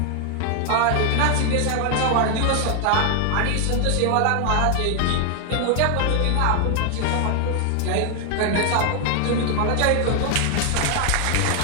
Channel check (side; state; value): both; different; correlation 0.00